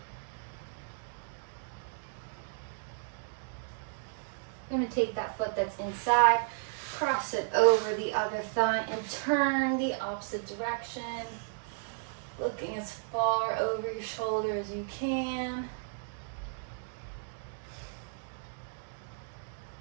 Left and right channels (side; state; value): left; silent; digital silence